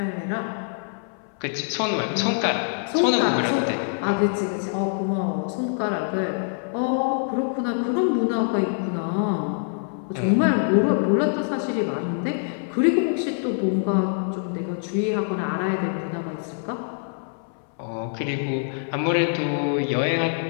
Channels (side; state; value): right; silent; 60 dB below the other